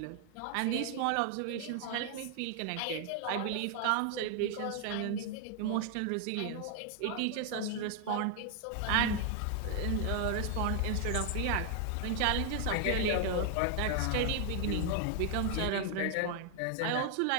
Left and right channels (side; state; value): both; different; correlation 0.00